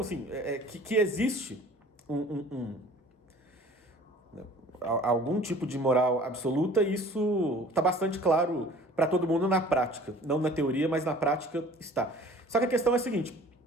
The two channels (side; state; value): both; normal; correlation 0.48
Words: que existe algum tipo de moral absoluta, isso está bastante claro para todo mundo na prática. Não na teoria, mas na prática está. Só que a questão é a seguinte: